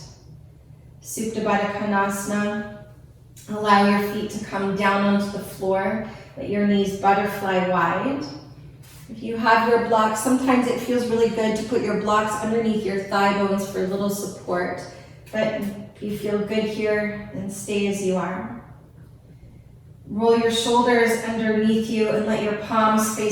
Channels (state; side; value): identical; both; correlation 1.00